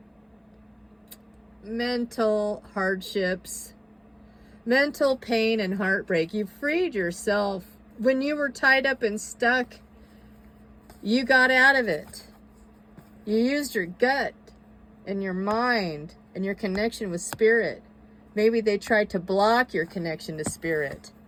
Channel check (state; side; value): identical; both; correlation 1.00